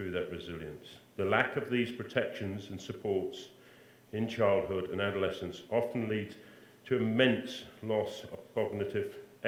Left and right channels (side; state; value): both; identical; correlation 1.00